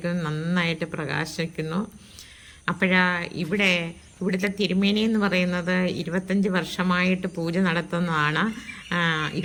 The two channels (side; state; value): both; identical; correlation 1.00